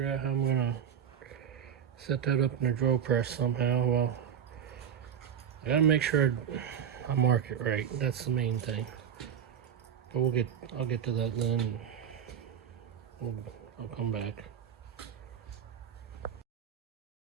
out how I'm gonna set that up in a drill press somehow. Well, I gotta make sure I mark it right. That's the main thing. But I'll get to that then. I'll come back.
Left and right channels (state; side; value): quieter; left; 8.4 dB